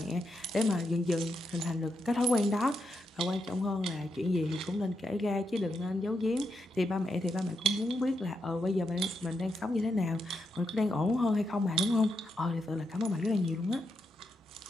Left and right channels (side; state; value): both; normal; correlation 0.83